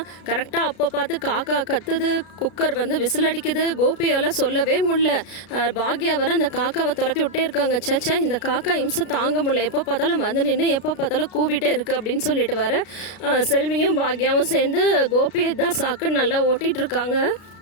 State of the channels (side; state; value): right; late; 33 ms